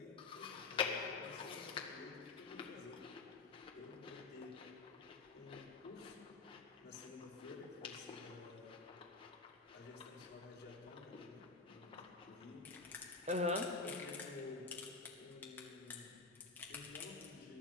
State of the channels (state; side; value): quieter; right; 3.9 dB